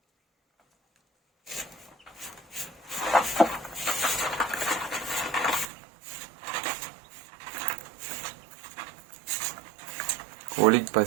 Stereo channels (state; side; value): drops out; left; at 5.7 s